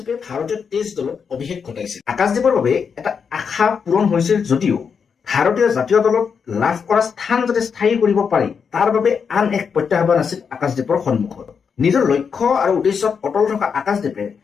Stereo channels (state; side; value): quieter; right; 6.3 dB